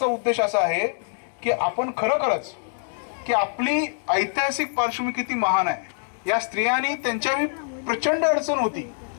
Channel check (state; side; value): silent; right; digital silence